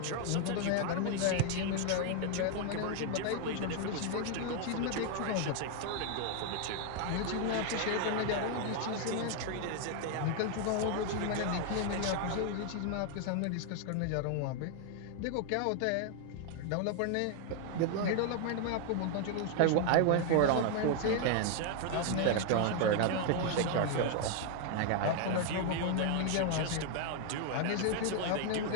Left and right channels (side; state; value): both; different; correlation 0.00